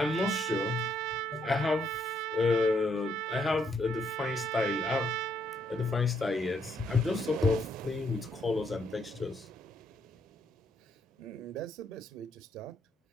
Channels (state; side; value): normal; both; correlation 0.73